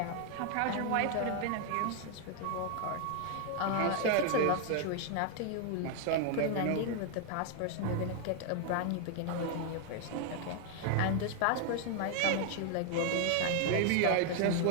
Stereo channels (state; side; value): different; both; correlation 0.00